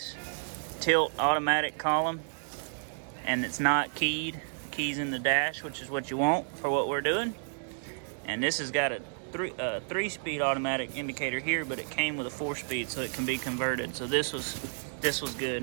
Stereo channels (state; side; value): silent; left; digital silence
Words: tilt automatic column. And it's not keyed. Keys in the dash, which is what you want for what we're doing. And this has got a 3-speed automatic indicator here, but it came with a 4-speed, so it can be converted. So this was good,